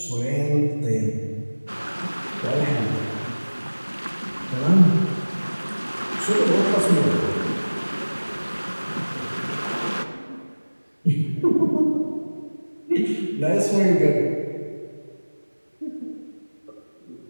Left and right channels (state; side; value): inverted; both; correlation -1.00